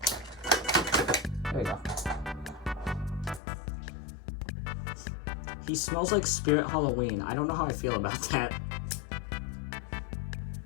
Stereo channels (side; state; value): right; drops out; at 3.4 s